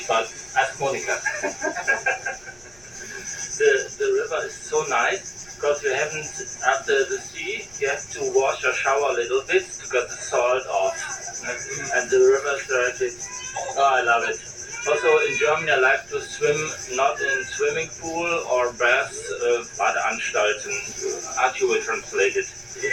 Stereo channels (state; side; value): noise; right; rumble, 25 dB below the sound